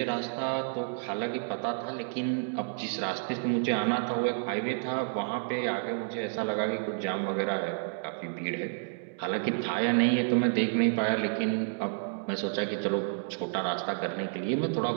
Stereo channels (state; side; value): silent; left; digital silence